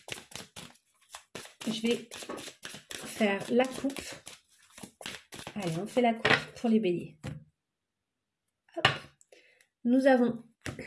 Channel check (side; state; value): both; identical; correlation 1.00